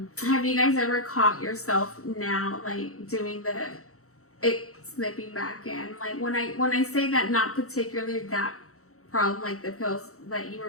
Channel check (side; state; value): right; late; 0.64 ms